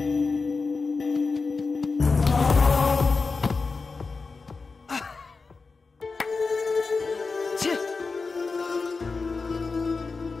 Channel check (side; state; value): right; quieter; 4.3 dB